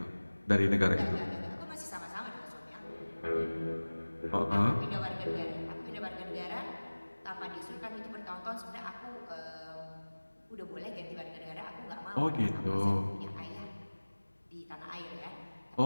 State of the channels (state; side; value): inverted; both; correlation -1.00